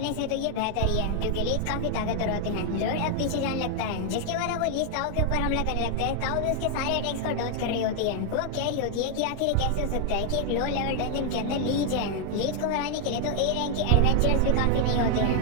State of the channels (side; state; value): both; different; correlation 0.00